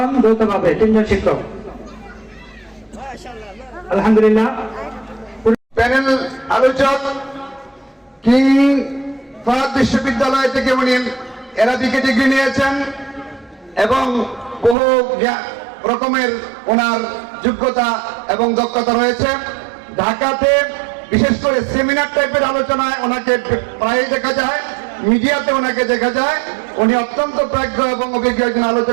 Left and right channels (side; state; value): left; drops out; at 14.8 s